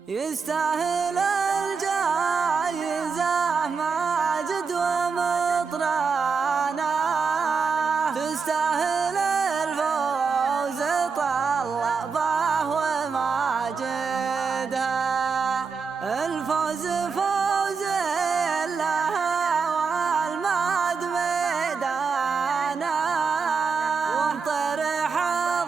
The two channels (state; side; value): quieter; left; 5.3 dB